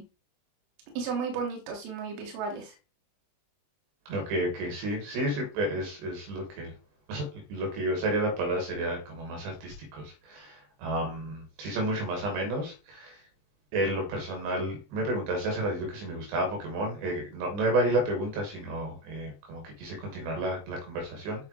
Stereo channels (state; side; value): late; left; 20 ms